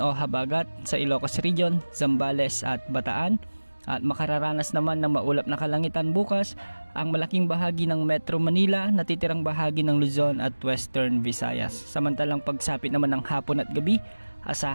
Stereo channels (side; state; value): both; inverted; correlation -1.00